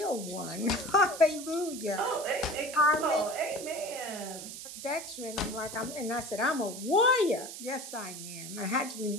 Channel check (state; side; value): noise; right; hiss, 10 dB below the sound